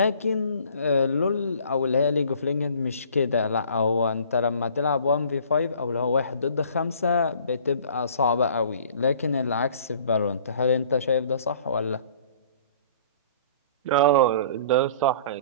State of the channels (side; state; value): both; inverted; correlation -0.52